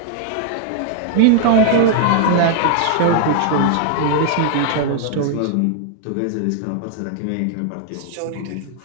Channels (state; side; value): different; both; correlation -0.01